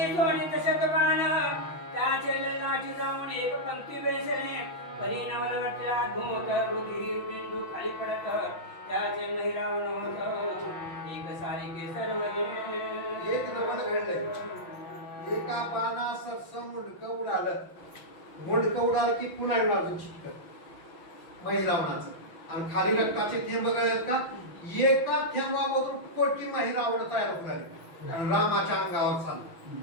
सोनित शतबाण त्याचे लाठी जाऊन एक पंक्ती बेसले परिणामाला वाटला घोट रुधिर बिंदू खाली पडत त्याचे महिरावण होत एक सारिके सर्व एक नवल घडलंय. एका बाणा सरसं मुंडकं उडालं. मुंडकं उडालं की पुन्हा अजून चिटकत महिरावणाचं आणि खाली रक्ताचे थेंब गळत का एका थेंबामधून कोटी महिरावण तयार होणार आणि रामाच्या अंगावर चाललं.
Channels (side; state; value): right; late; 6.1 ms